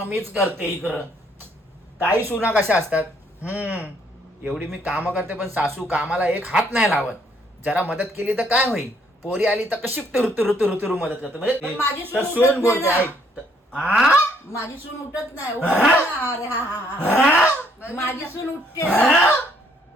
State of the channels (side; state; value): both; normal; correlation 0.68